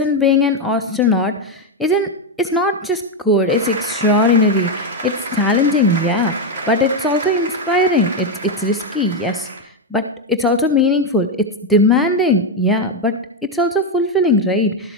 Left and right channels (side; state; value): both; normal; correlation 0.05